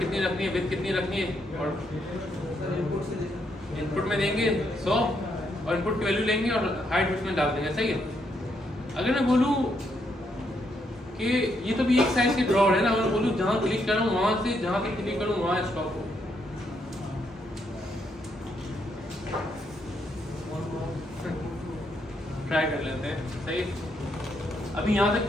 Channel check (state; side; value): normal; both; correlation 0.77